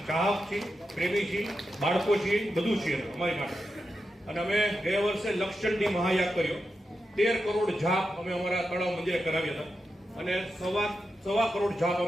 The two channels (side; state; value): both; normal; correlation 0.89